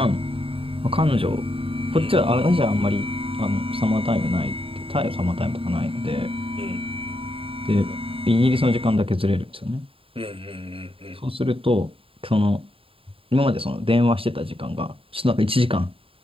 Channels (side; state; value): left; late; 0.27 ms